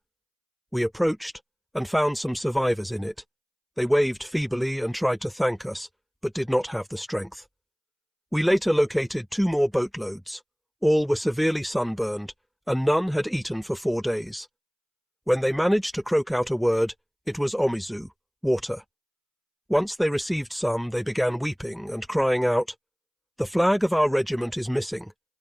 We approached and found some survivors in it. They waved feebly and tried to thank us, but did not have the strength. We later located 2 more boatloads. All were severely sunburned, and none had eaten for 4 days. When they managed to croak out a word, it was omizu, water. Once they received some, they began weeping and crying out, "The flag of our regiment is missing.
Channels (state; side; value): identical; both; correlation 1.00